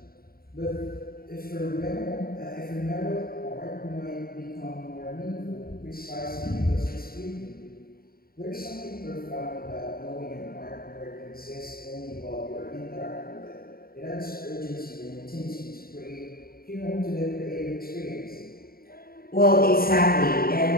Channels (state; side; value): late; right; 0.43 ms